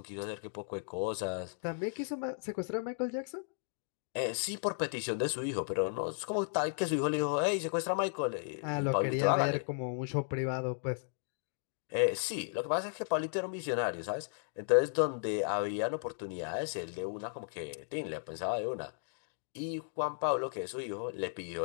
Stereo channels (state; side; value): silent; right; digital silence